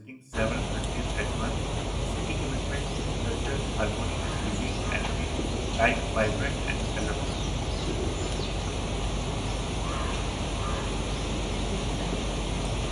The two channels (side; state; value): both; identical; correlation 1.00